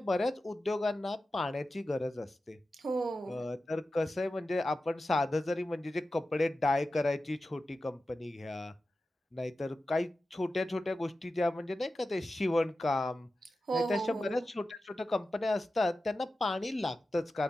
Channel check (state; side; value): normal; both; correlation 0.93